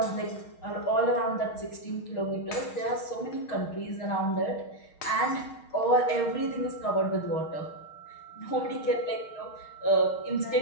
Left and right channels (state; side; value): late; right; 6.4 ms